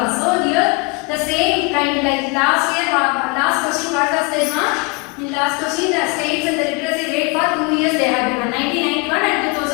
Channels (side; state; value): right; quieter; 29.7 dB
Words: So here the same kind like last year, last question what was there, ma'am? In last question, the states and the literacy rate for 2 years they have given 1991 and